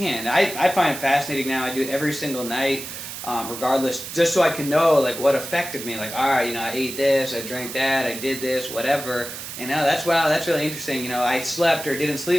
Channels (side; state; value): right; noise; hiss, 9 dB below the sound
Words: I find it fascinating now. I do it every single night, regardless, just so I can know what affected me. All right, I ate this, I drank that, I did this, whatever. And now that's really interesting. I slept or didn't